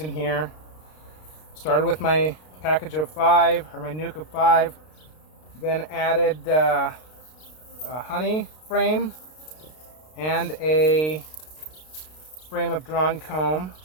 here. Started with my package of 5, or my nuke of 5, then added a honey frame and a frame of drawn comb.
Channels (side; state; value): right; late; 32 ms